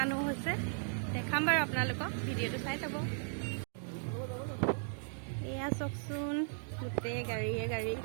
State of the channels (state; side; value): silent; left; digital silence